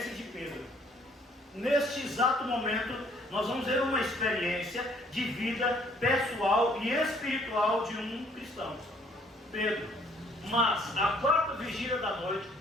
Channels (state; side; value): normal; both; correlation 0.62